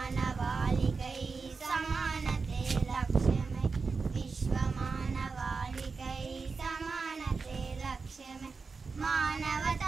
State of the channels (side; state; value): left; quieter; 4.6 dB